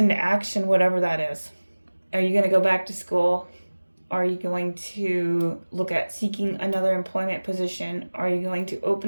action, whatever that is. Are you going to go back to school? Are you going to look at seeking another employment position? Are you going to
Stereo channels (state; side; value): inverted; both; correlation -1.00